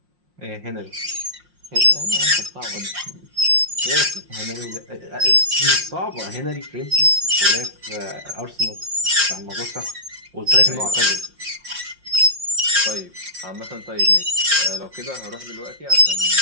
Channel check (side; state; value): left; late; 5.6 ms